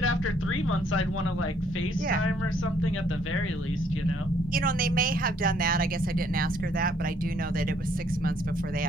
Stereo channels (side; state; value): both; normal; correlation 0.66